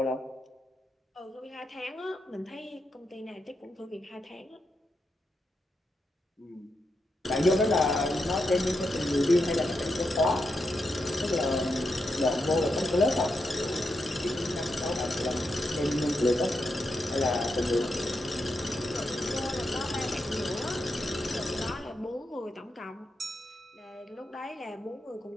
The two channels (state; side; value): normal; both; correlation 0.85